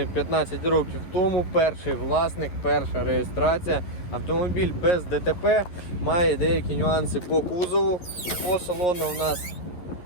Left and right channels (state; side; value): late; right; 11 ms